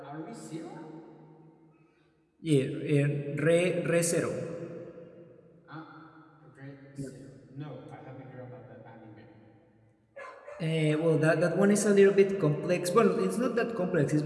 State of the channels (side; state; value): both; identical; correlation 1.00